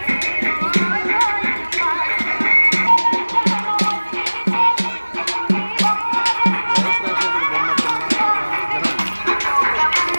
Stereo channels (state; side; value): inverted; both; correlation -1.00